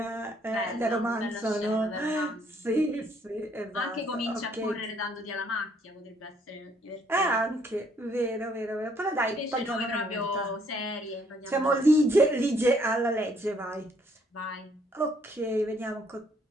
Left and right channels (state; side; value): normal; both; correlation 0.66